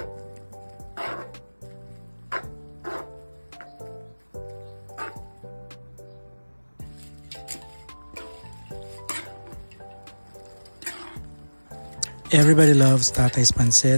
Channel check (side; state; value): both; inverted; correlation -1.00